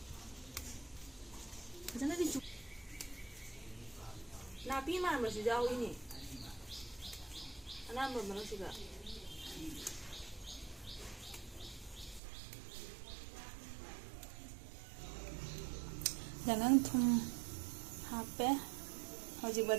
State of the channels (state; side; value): drops out; left; at 12.2 s